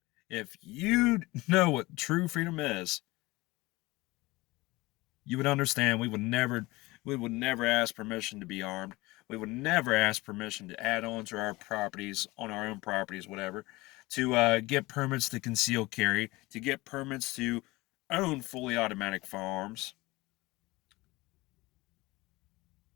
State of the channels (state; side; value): quieter; right; 21.3 dB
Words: if you know what true freedom is, you would understand we would never ask permission to be armed. We would never ask permission to add on to our properties, on our own properties, whatever, to get permits to conceal carry, to get permits to own fully automatic firearms,